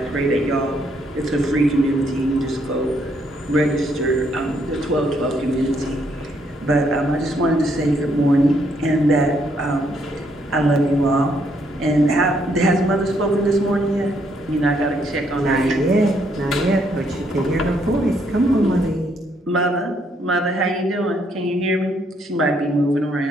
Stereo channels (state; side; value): normal; both; correlation 0.72